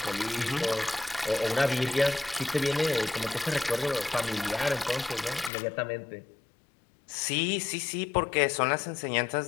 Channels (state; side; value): drops out; right; at 5.5 s